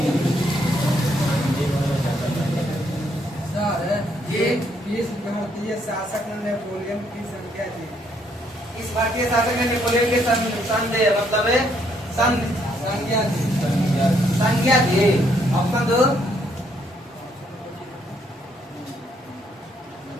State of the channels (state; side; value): normal; both; correlation 0.71